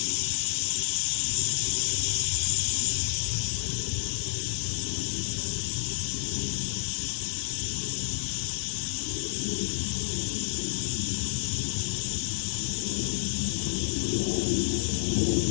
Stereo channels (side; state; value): right; silent; digital silence